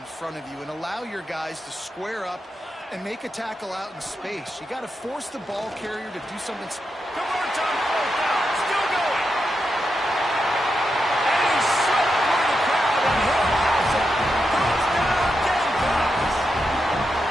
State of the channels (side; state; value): both; normal; correlation 0.86